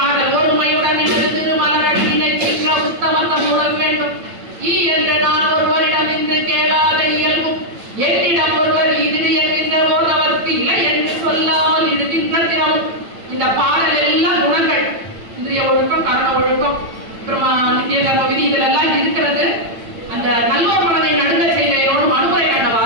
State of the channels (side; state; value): left; late; 8.9 ms